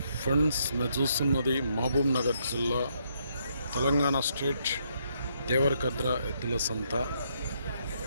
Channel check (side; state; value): both; inverted; correlation -0.74